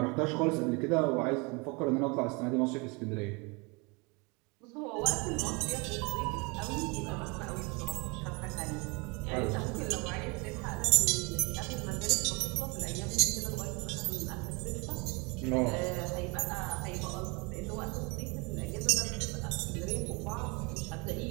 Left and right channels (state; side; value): quieter; left; 29.1 dB